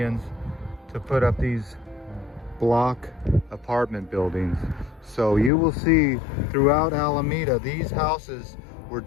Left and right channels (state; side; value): drops out; right; at 5.5 s